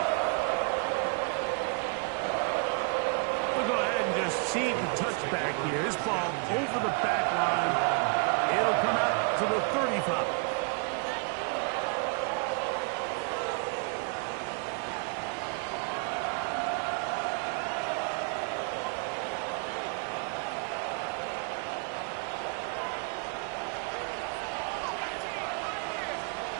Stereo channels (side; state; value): left; quieter; 37.1 dB